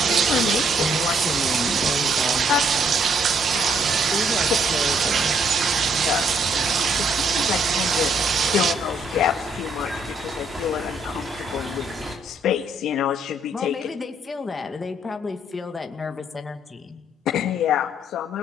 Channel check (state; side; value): normal; both; correlation 0.69